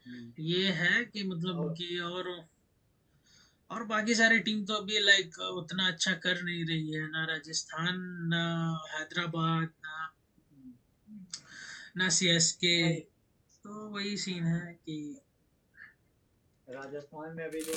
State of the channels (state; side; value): identical; both; correlation 1.00